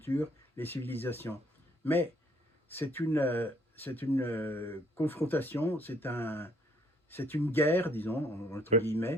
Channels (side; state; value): both; normal; correlation 0.66